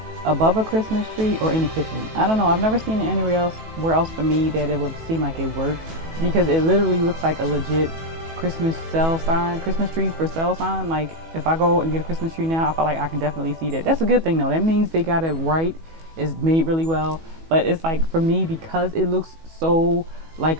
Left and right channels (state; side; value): late; left; 18 ms